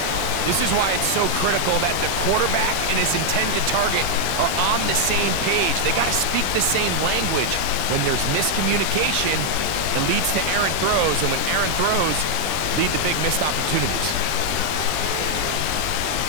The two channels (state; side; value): different; both; correlation 0.00